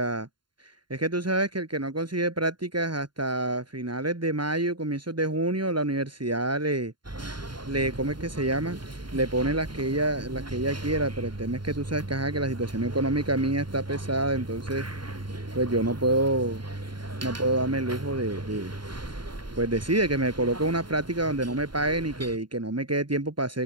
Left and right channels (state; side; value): late; left; 0.72 ms